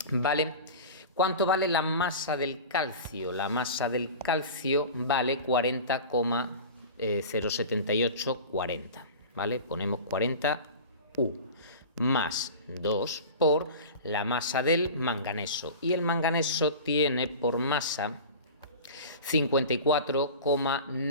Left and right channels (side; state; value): both; inverted; correlation -0.34